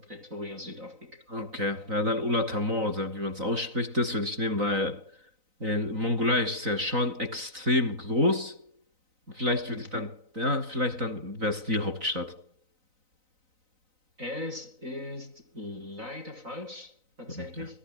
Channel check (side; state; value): left; late; 3.9 ms